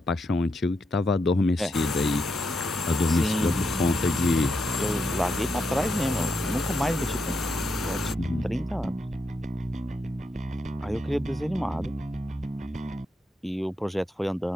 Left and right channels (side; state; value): both; normal; correlation 0.83